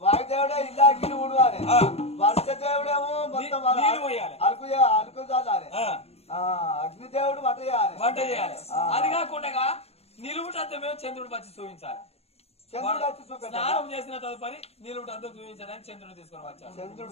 వాయుదేవుడే ఇల్లాగిలు ఊడవాలి వర్ష దేవుడేమో మొత్తం అలుకు చాలాలి అగ్నిదేవుడు వంట చేయాలి అది కాకుండా నిలువుటంతా మేము చంద్రుడు వచ్చి చూపించాలి స్నానం చేసిన తదుపరి నిలువుటంతా చూపించడానికి చంద్రుడు తీసుకొని వచ్చాడు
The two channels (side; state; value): right; late; 0.30 ms